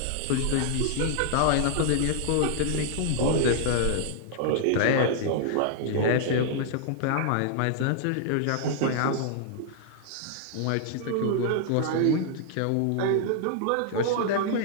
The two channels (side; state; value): both; different; correlation -0.01